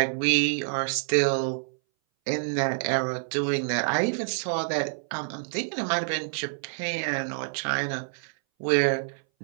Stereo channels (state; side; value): silent; left; 59 dB below the other